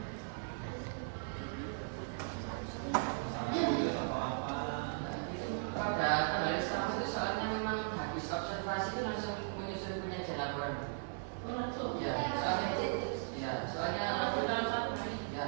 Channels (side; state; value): left; silent; 53 dB below the other